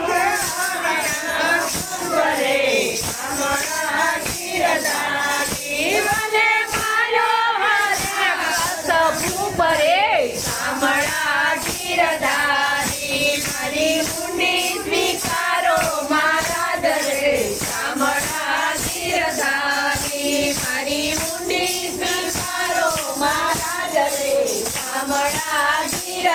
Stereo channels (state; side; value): identical; both; correlation 1.00